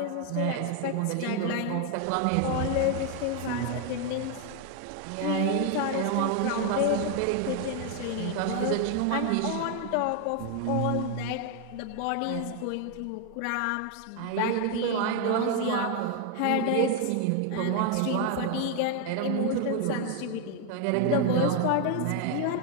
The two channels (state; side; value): different; both; correlation 0.01